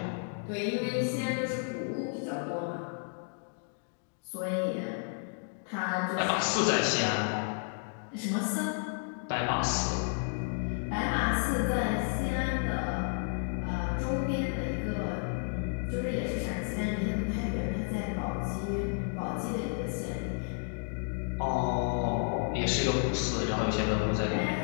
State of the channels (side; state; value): right; silent; 57 dB below the other